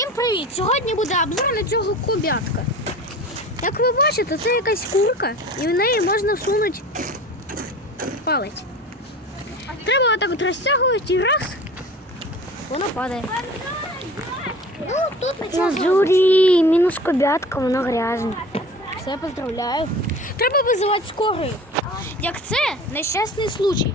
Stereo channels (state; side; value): normal; both; correlation 0.40